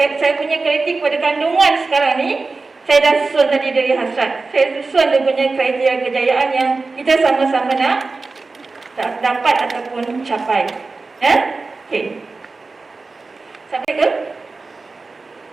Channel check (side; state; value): left; quieter; 3.8 dB